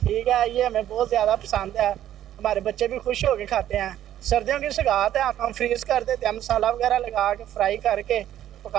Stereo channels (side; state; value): left; quieter; 11.8 dB